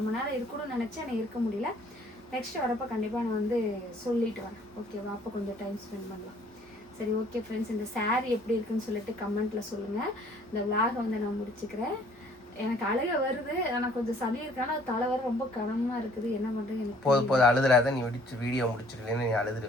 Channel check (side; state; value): both; normal; correlation 0.58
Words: நேரம் இருக்கணும்னு நினச்சேன், எனக்கு இருக்க முடியல. நெக்ஸ்ட் வரப்போ கண்டிப்பாக நான் வந்து சொல்லிட்டு வரேன், ஓகேவா? அப்போ கொஞ்சம் டைம் ஸ்பெண்ட் பண்ணலாம். சரி, ஓகே ஃப்ரெண்ட்ஸ், இந்த சாரீ எப்படி இருக்குன்னு சொல்லிட்டு கமெண்ட்டில் சொல்லுங்கள். இந்த விலாகை வந்து நான் முடிச்சுக்கிறேன். எனக்கு அழுக வருது, ஆனால் கொஞ்சம் சளி இருக்கான தலை வர ரொம்ப கனமாக இருக்குது. என்ன பண்ணுறது எனக்கு போதும் அழுதுறாத, நீ வீடியோ முடிச்சிருக்கேன்னு நீ